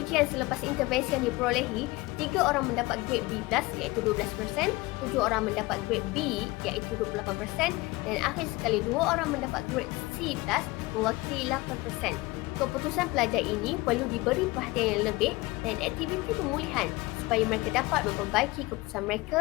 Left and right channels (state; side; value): quieter; right; 21.8 dB